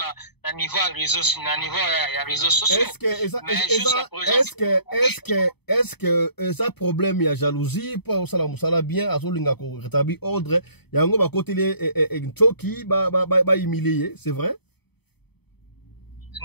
à niveau réseaux sociaux. Est-ce que ça problème il y a jalousie pour ça bien à solinga ko rétablir ordre yango ba côté les choki ba humilier, c'est vrai?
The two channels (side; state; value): right; late; 0.98 ms